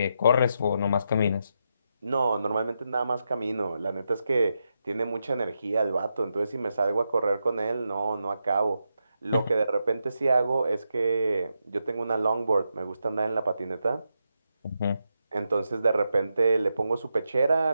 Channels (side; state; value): both; inverted; correlation -0.85